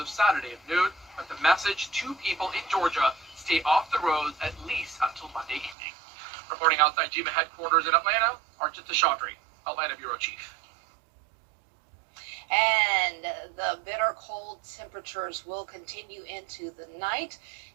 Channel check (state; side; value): drops out; left; at 5.8 s